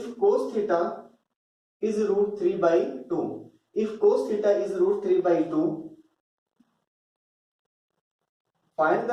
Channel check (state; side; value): identical; both; correlation 1.00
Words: cos theta is root 3/2, if cos theta is root 3/2, find